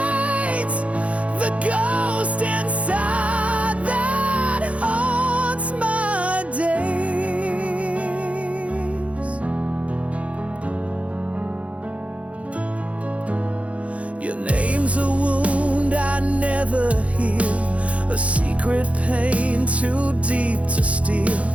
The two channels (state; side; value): late; left; 0.064 ms